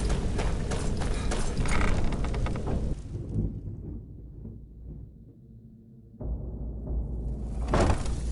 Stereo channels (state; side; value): identical; both; correlation 1.00